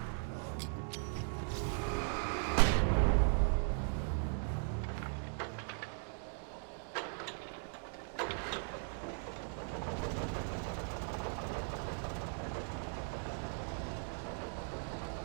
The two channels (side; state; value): left; silent; 52 dB below the other